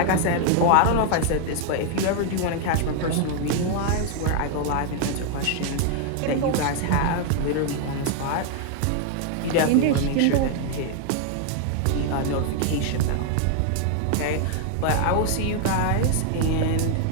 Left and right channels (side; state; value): both; different; correlation 0.00